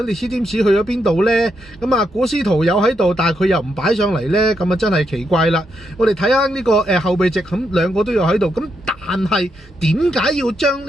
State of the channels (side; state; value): both; normal; correlation 0.80